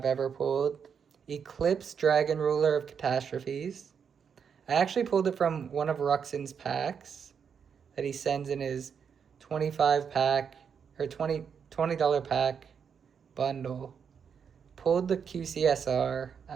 ever pulled. Eclipse Dragon Ruler of Catastrophes. I actually pulled it from one of Ruxin's packs that he sends in his 25 pack or $20 pack bundle. Pulled the QCSR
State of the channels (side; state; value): left; quieter; 6.9 dB